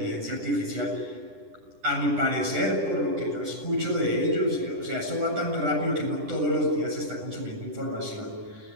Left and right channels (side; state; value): left; late; 10 ms